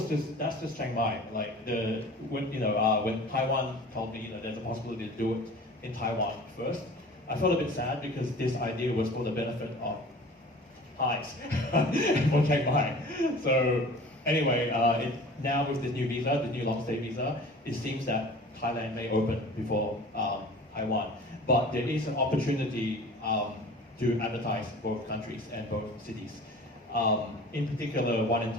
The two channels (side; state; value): both; normal; correlation 0.42